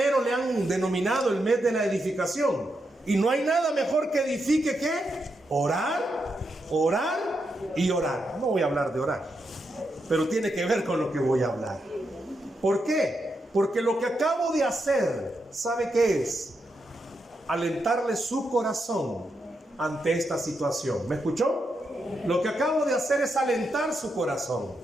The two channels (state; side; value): normal; both; correlation 0.83